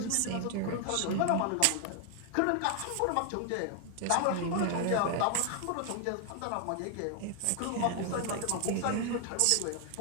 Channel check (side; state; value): both; different; correlation 0.00